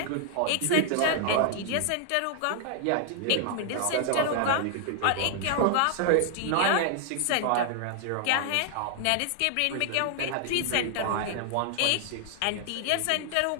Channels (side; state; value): both; different; correlation 0.00